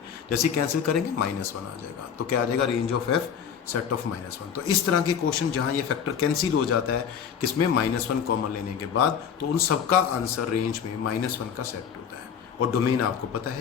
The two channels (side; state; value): right; quieter; 7.6 dB